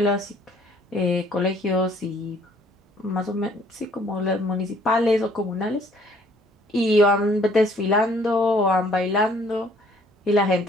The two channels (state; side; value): normal; both; correlation 0.60